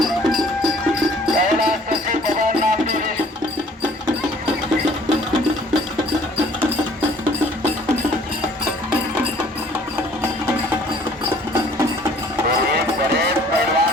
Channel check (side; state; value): both; normal; correlation 0.55